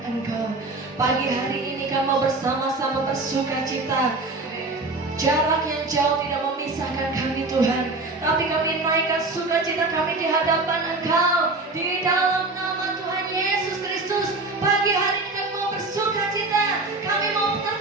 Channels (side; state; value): left; quieter; 3.2 dB